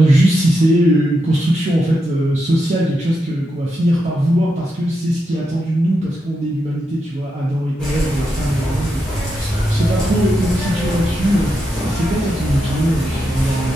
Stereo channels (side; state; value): both; normal; correlation 0.85